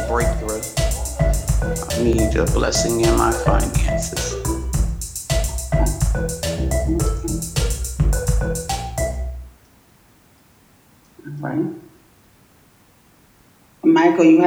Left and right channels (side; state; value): both; identical; correlation 1.00